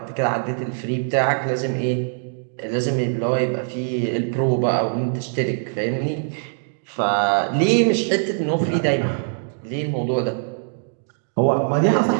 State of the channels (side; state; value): left; silent; digital silence